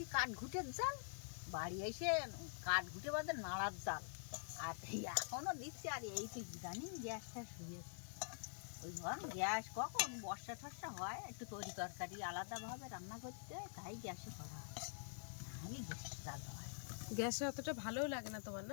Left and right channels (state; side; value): silent; right; digital silence